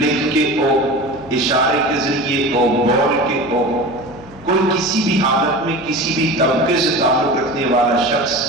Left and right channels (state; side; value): noise; right; hum, 23 dB below the sound